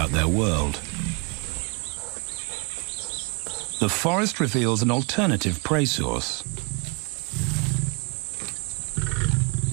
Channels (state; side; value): quieter; left; 31.8 dB